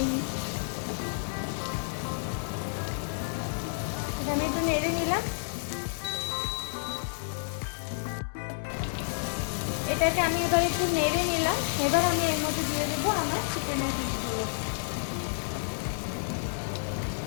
আমি একটু নেড়ে নিলাম। এটাকে আমি এবার একটু নেড়ে নিলাম। এবার আমি এর মধ্যে দিয়ে দেবো আমার চিকেনের পিসগুলো।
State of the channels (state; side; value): silent; right; digital silence